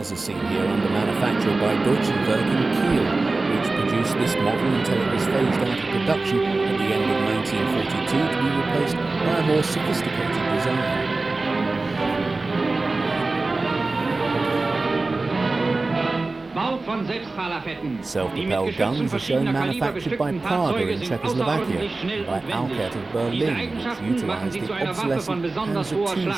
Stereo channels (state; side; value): quieter; left; 3.4 dB